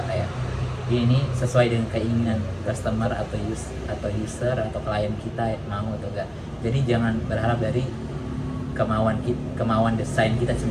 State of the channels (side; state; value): both; identical; correlation 1.00